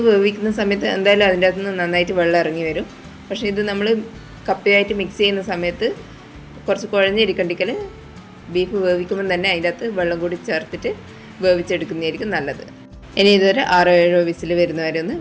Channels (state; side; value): identical; both; correlation 1.00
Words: വേവിക്കുന്ന സമയത്ത് എന്തായാലും അതിൻ്റെ അകത്തുനിന്ന് നന്നായിട്ട് വെള്ളം ഇറങ്ങി വരും. പക്ഷേ ഇത് നമ്മൾ കപ്പയായിട്ട് മിക്സ് ചെയ്യുന്ന സമയത്ത് കുറച്ച് കുഴഞ്ഞിരിക്കണ്ടെങ്കിൽ ബീഫ് വേവിക്കുമ്പോൾ തന്നെ അതിൻ്റെ അകത്ത് വെള്ളം കൂടി ചേർത്തിട്ട് വേവിച്ചെടുക്കുന്നതായിരിക്കും നല്ലത്. ഇനി ഇതൊരു 6-7 വിസിൽ വരുന്നവരെ ഒന്ന്